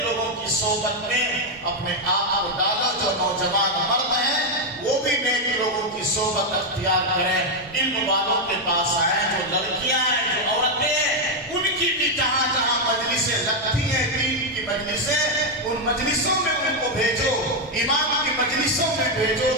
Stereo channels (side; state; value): both; normal; correlation 0.02